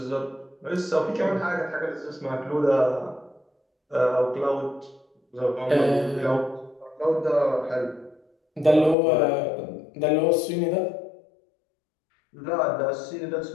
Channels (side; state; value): right; drops out; at 9.0 s